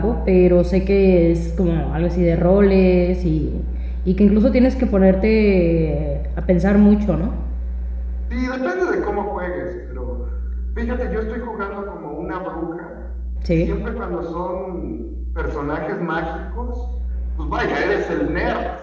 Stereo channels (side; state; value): both; identical; correlation 1.00